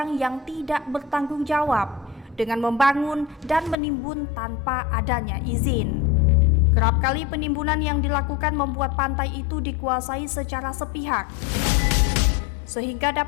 yang tidak bertanggung jawab dengan membangun dan menimbun tanpa adanya izin? Kerap kali penimbunan yang dilakukan membuat pantai itu dikuasai secara sepihak, sehingga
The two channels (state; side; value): drops out; right; at 3.8 s